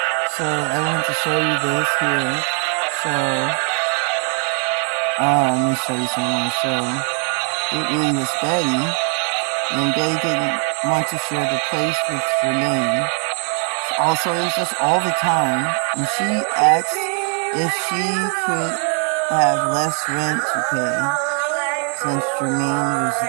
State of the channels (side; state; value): left; quieter; 34.9 dB